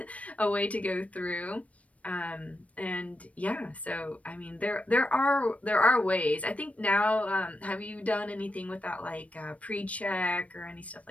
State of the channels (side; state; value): right; late; 0.066 ms